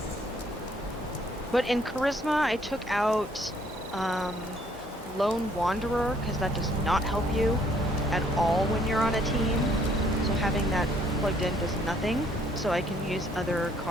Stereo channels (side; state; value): both; normal; correlation 0.64